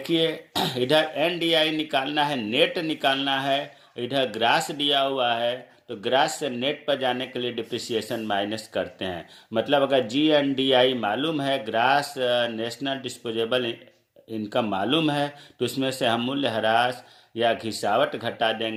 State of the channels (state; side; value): identical; both; correlation 1.00